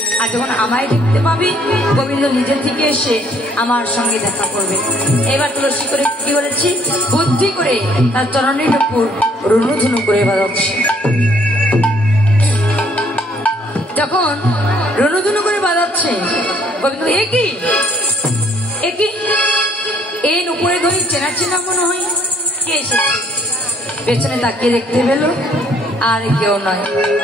আর যখন আমায় দেখতে পাবে গোবিন্দ নিজের থেকে এসে আমার সঙ্গে দেখা করবে। এবার তুলসী করে কি করেছি, বুদ্ধি করে তার চরণের উপর রুনুঝুনু করে বাজাচ্ছে। যখন রুনুঝুনু করে বাজাচ্ছে, গোবিন্দ একই একই এই নুপুরে ধরে চেনা চেনা মনে হয়, কে এসেছে? পেছনে তাকিয়ে দেখতে পেল, আর কেউ নয়,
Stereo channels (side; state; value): both; normal; correlation 0.64